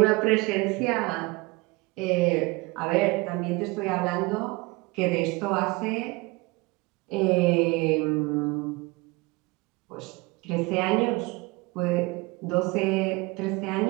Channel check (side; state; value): left; quieter; 24.6 dB